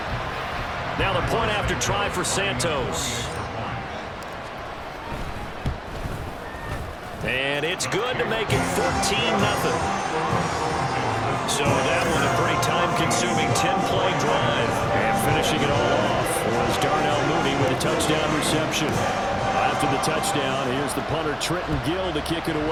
Now the point after try for Santos. And it's good to make it 14-0. So that was a pretty time-consuming 10-play drive. And finishing it all off was Darnell Mooney with a touchdown reception. After the touchdown, here's the punter Trenton Gill to kick it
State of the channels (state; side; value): identical; both; correlation 1.00